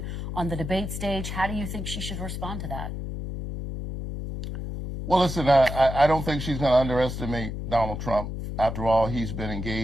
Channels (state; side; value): noise; left; hum, 6 dB below the sound